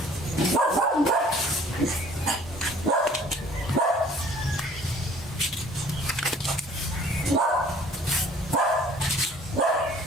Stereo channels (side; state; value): both; normal; correlation 0.53